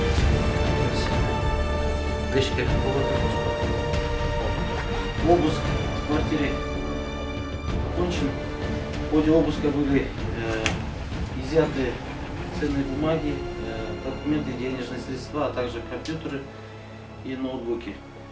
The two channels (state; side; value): identical; both; correlation 1.00